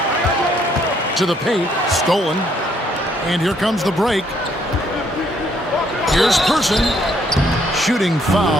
To the paint, stolen. And here comes the break. Here's Person. Shooting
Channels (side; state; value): both; normal; correlation 0.68